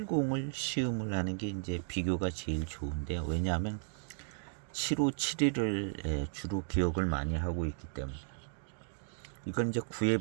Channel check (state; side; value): silent; left; digital silence